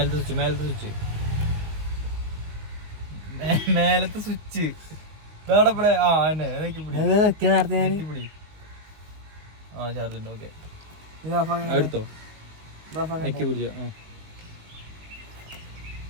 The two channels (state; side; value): late; left; 19 ms